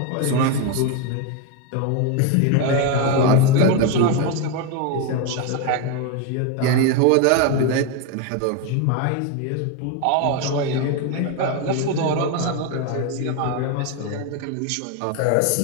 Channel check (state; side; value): different; both; correlation 0.02